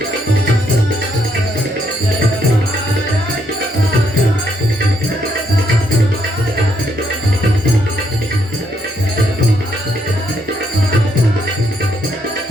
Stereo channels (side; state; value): both; normal; correlation 0.74